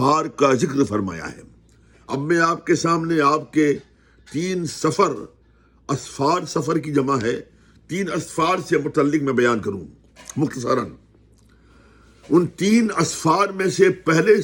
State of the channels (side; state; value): both; identical; correlation 1.00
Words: کا ذکر فرمایا ہے۔ اب میں آپ کے سامنے آپ کے 3 سفر، اسفار سفر کی جمع ہے، 3 اسفار سے متعلق میں بیان کروں مختصراً۔ ان 3 اسفار میں سے پہلے